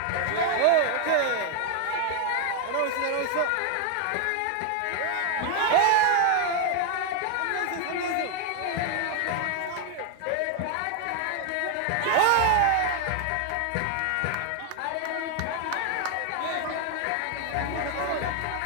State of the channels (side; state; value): both; different; correlation 0.00